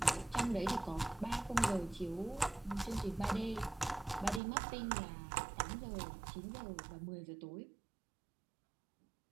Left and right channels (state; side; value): drops out; left; at 4.4 s